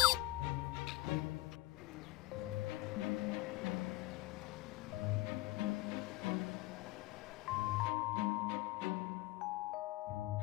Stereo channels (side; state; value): right; quieter; 18.1 dB